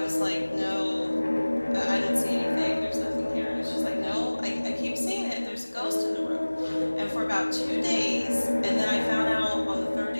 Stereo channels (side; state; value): both; inverted; correlation -1.00